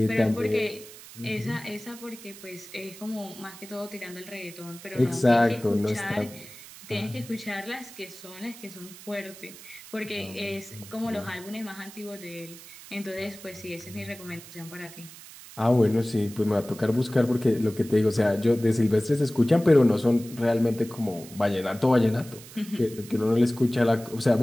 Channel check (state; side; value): noise; right; hiss, 17 dB below the sound